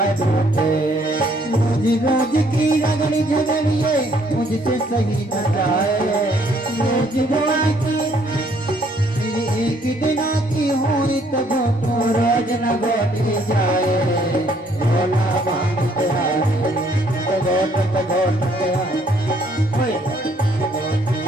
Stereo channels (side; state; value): both; normal; correlation 0.65